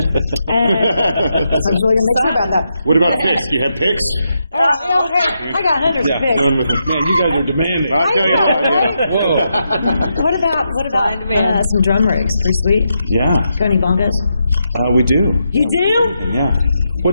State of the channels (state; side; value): inverted; both; correlation -0.83